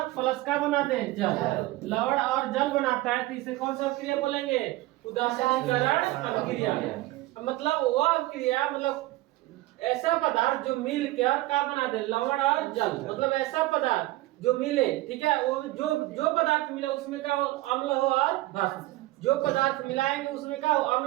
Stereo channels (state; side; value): quieter; left; 18.3 dB